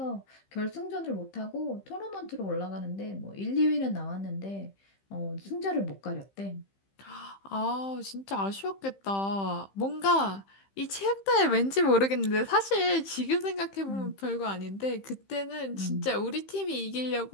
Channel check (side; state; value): right; late; 15 ms